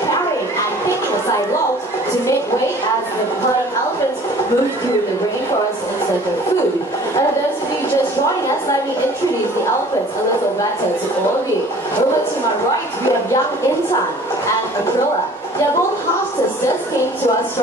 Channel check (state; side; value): normal; both; correlation 0.49